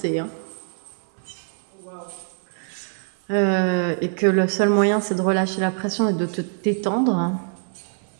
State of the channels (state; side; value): silent; left; 60 dB below the other